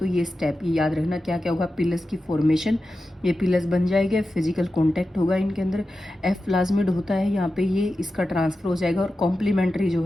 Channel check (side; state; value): both; normal; correlation 0.92